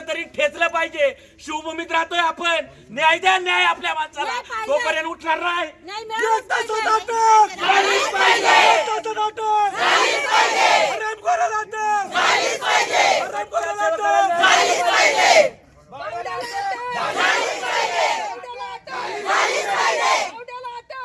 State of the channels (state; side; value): identical; both; correlation 1.00